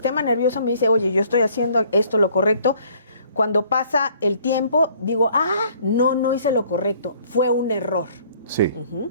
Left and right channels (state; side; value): inverted; both; correlation -0.59